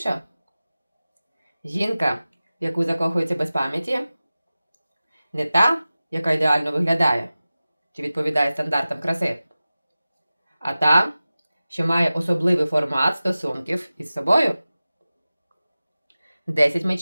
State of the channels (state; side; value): inverted; both; correlation -0.96